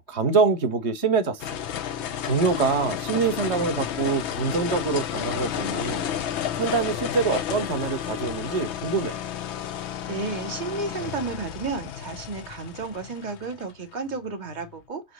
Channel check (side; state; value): right; late; 3.2 ms